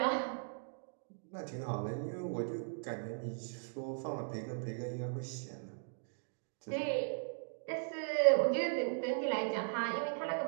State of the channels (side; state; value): left; silent; digital silence